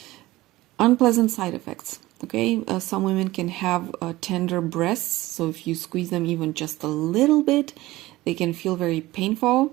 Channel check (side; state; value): left; quieter; 18.1 dB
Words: unpleasant side effects. Okay, some women can have tender breasts, so if you squeeze them even just a little bit, they can feel very